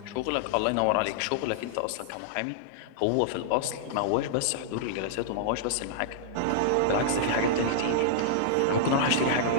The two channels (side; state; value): both; different; correlation -0.01